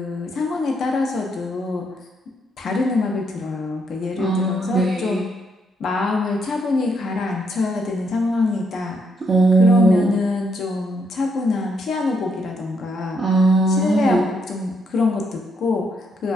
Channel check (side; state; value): both; normal; correlation 0.76